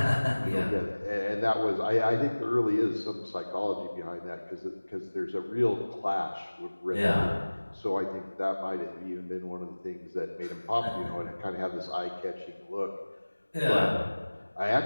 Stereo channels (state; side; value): inverted; both; correlation -1.00